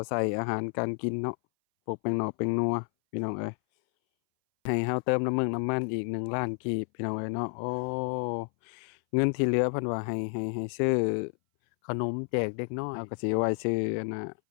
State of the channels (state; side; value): silent; right; 58 dB below the other